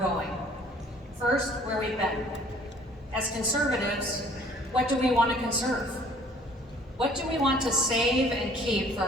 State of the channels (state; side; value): normal; both; correlation 0.54